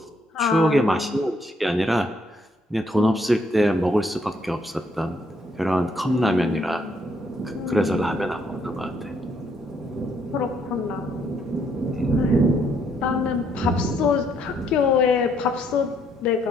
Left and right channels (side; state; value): both; normal; correlation 0.71